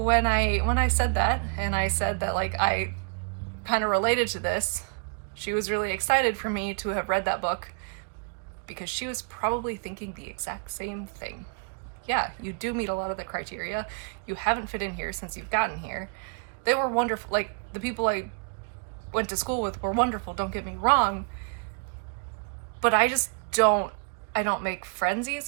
I said that, and I said that, like, I kind of related to this, she was really excited for me to have read that book because she was probably thinking the exact same thing. Yeah, you do meet a lot of the criteria. You haven't fit in here since you've gotten here. They were wonderful. Like, the people I went to school with were wonderful, don't get me wrong. But I don't make friends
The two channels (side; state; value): left; quieter; 38.5 dB